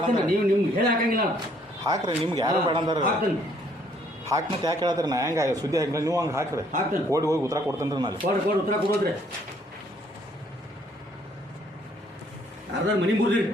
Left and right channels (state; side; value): normal; both; correlation 0.64